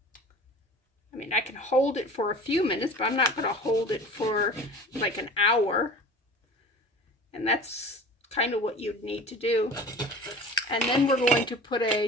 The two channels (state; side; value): normal; both; correlation 0.39